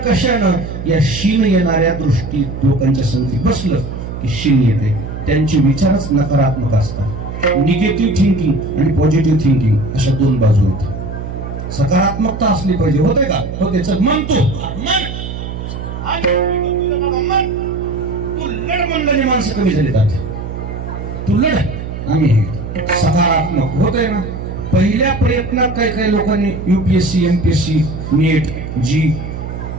कशानं, या शिन येणाऱ्या दृष्टी लोकांच्या संगती बसलं की शिन येते. त्यांचे विचारच नकारात्मक असतात. निगेटिव्ह थिंकिंग आणि पॉझिटिव्ह थिंकिंग अशा 2 बाजू आहेत. सकारात्मकता असली पाहिजे. होते का? होते. चल म्हणतो तू लढ म्हणलं, माणसं कमी झाली जात. तू लढ, आम्ही सकारात्मक होतंय ना. पहिल्या प्रयत्नात काही लोकांनी UPSC MPSC नीट जी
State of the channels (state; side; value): noise; right; hum, 7 dB below the sound